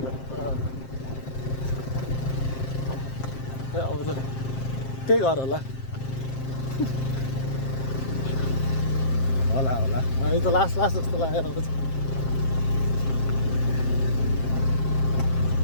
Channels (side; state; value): right; late; 7.6 ms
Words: अब त त्यही घर होला होला होला यो त लास्ट लास्ट जस्तो लागेर आउँछ।